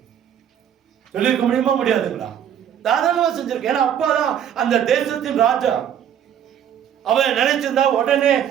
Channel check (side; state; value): left; quieter; 9.4 dB